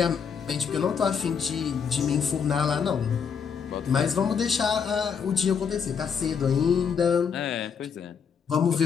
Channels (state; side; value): quieter; right; 6.7 dB